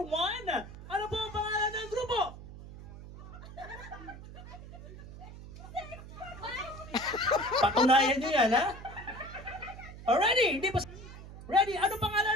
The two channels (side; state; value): right; noise; hum, 14 dB below the sound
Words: ano po ang pangalan ng grupo? Patunayan nyo yan, ha? Already, hindi pa... Ready? Ano